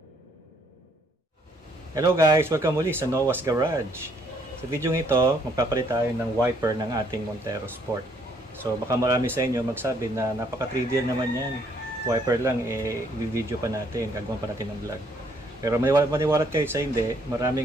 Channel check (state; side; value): normal; both; correlation 0.68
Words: Hello guys! Welcome muli sa Noah's Garage. Sa video ito, magpapalit tayo ng wiper ng ating Montero Sport. So baka marami sa inyo magsabi na napaka-trivial naman yan. Wiper lang, i-video pa natin, gagawin pa natin ng vlog. Pero maniwalat kayo sa hindi,